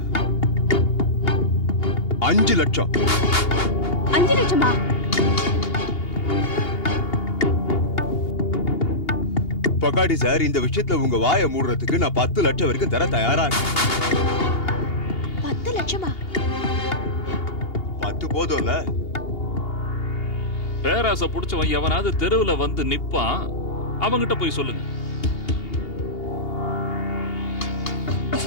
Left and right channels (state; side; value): late; right; 2.8 ms